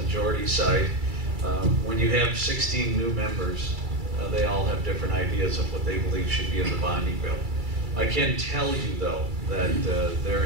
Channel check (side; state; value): left; late; 2.3 ms